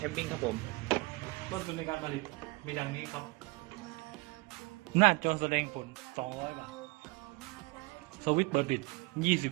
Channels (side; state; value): left; quieter; 24.7 dB